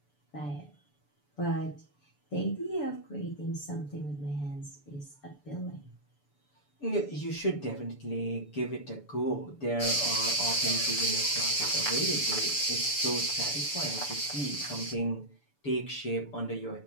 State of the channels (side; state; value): right; late; 6.9 ms